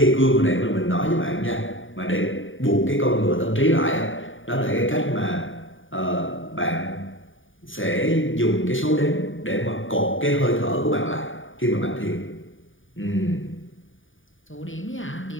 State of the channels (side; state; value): right; late; 0.57 ms